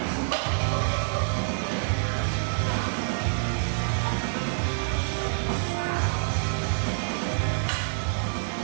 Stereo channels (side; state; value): left; silent; 60 dB below the other